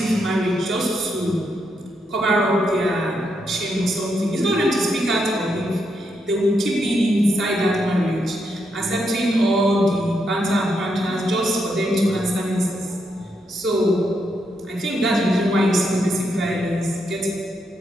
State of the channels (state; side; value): normal; both; correlation 0.80